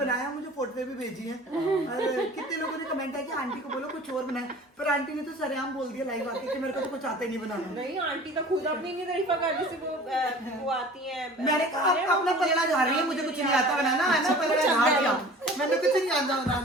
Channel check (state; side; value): normal; both; correlation 0.44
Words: मुझे फोटो भी भेजी है। और कितने लोगों ने कमेंट किया कि आंटी को बोलो कुछ और बनाए, पर आंटी ने तो सरेआम बोल दिया लाइव आके कि मेरे को तो कुछ आता ही नहीं बनाना। नहीं, आंटी तो खुद अपनी नहीं तारीफ कर, जैसे वो आती है। मैंने कहा आप अपना पलड़ा झाड़ रही है, मुझे कुछ नहीं आता बनाना है ना, पलड़ा झाड़ दिया, मैंने कुछ नहीं आता